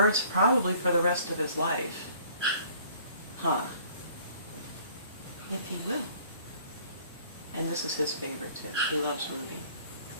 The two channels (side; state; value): both; inverted; correlation -0.55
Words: probably for the rest of his life. Huh. If he will. And this is his favorite too. He loves Ruby.